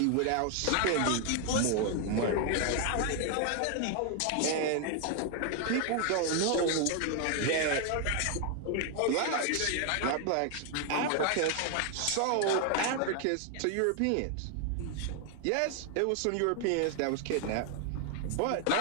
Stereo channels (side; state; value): both; different; correlation 0.00